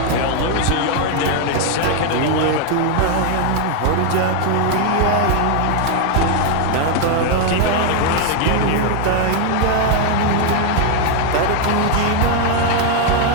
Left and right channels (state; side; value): different; both; correlation 0.00